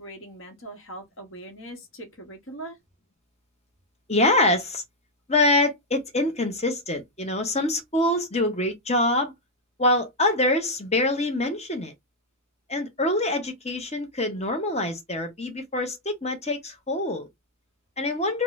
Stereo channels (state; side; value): normal; both; correlation -0.03